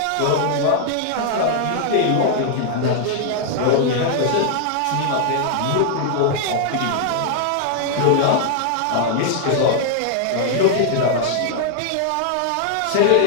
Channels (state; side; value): different; both; correlation 0.00